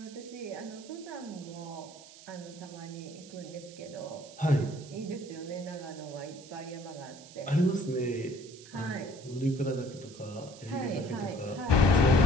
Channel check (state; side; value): noise; right; hiss, 18 dB below the sound